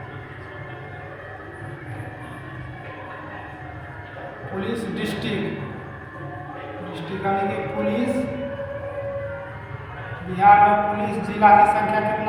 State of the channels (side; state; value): both; identical; correlation 1.00